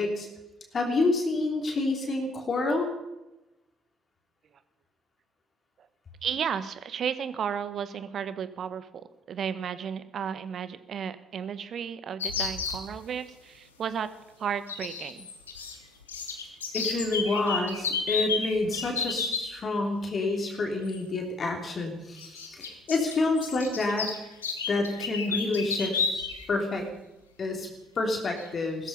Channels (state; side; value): normal; both; correlation 0.58